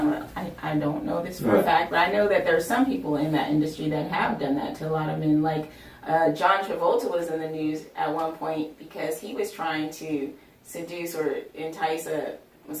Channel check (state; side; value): identical; both; correlation 1.00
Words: I don't know this for a fact, but I know that there's some people in that industry that have done that to a lot of men. Like John Travolta was in the news at one point because he was trying to seduce or entice a